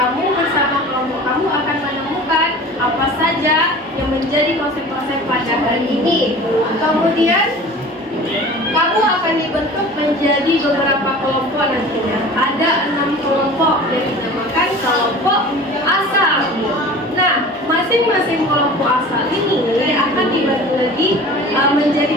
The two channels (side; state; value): both; normal; correlation 0.40